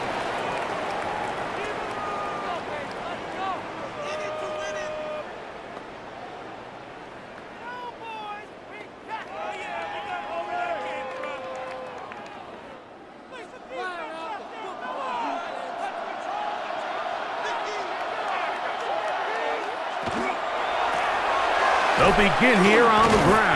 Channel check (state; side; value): identical; both; correlation 1.00